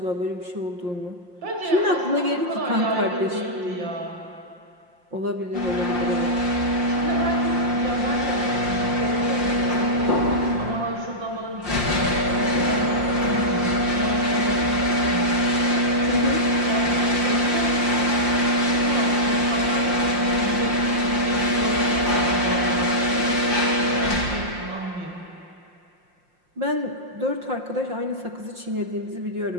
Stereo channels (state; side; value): late; left; 5.7 ms